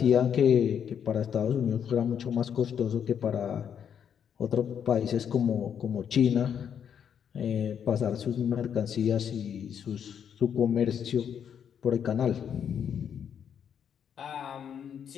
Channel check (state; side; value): quieter; right; 8.2 dB